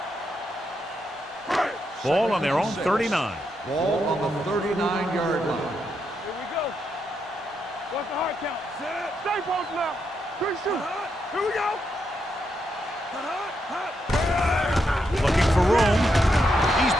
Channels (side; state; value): both; normal; correlation 0.81